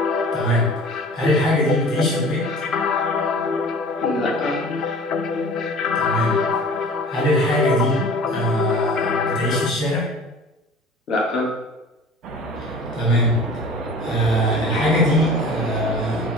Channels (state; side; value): normal; both; correlation 0.42